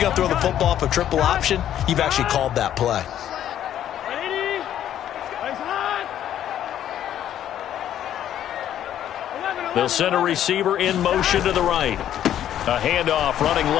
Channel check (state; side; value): quieter; right; 11.0 dB